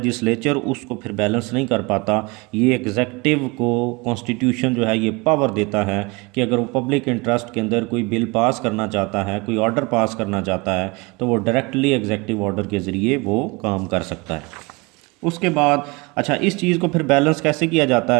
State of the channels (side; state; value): left; quieter; 26.4 dB